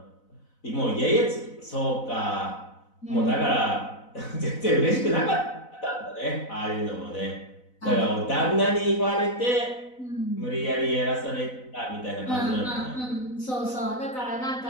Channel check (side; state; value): right; late; 4.0 ms